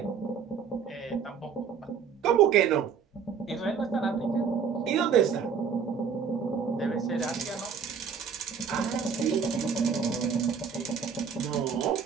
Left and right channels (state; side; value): quieter; left; 6.6 dB